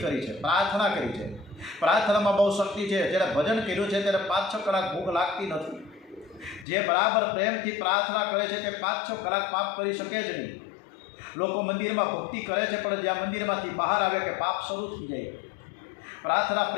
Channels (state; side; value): drops out; right; at 6.7 s